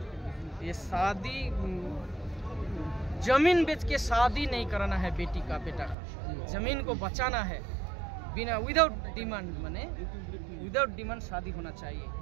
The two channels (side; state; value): left; drops out; at 6.0 s